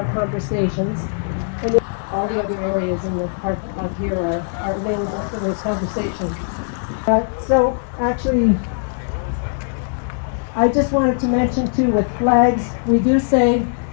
conversations. And all the other areas in the park up here are available for those conversations. So actually, I just wanted to mention too, with flags, we do say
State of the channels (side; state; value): right; silent; digital silence